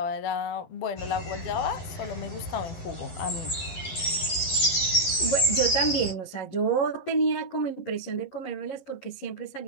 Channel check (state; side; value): late; right; 11 ms